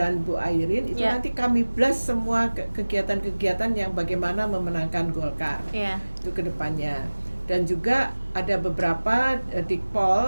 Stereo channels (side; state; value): both; inverted; correlation -1.00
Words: Bu Airin itu nanti kami blast semua kegiatan-kegiatan yang bagaimana memenangkan Golkar. Itu kedepannya. Dan juga ada beberapa